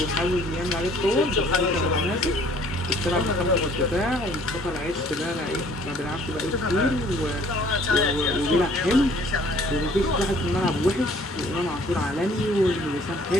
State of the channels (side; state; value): both; normal; correlation 0.57